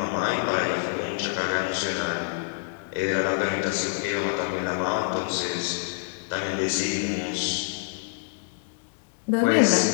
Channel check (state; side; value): silent; right; digital silence